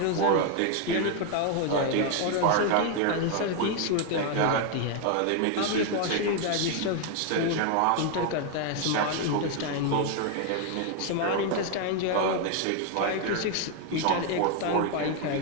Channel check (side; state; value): both; different; correlation 0.01